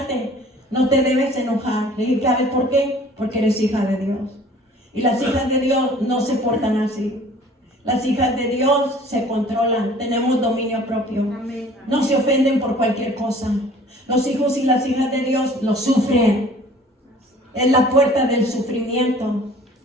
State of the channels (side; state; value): both; normal; correlation 0.50